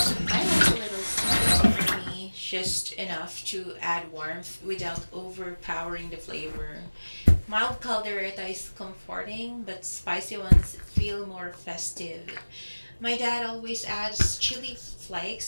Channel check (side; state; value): both; inverted; correlation -1.00